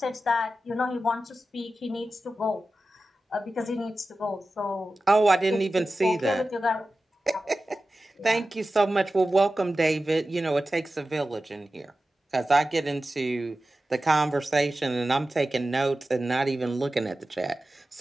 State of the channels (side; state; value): both; normal; correlation 0.94